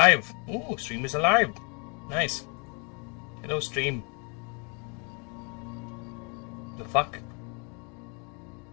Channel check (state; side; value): quieter; right; 34.5 dB